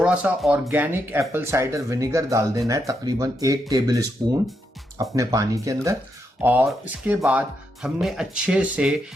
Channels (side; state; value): both; normal; correlation 0.81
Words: सा ऑर्गेनिक एप्पल साइडर विनेगर डाल देना है, तकरीबन 1 टेबल स्पून अपने पानी के अंदर। और इसके बाद हमने अच्छे से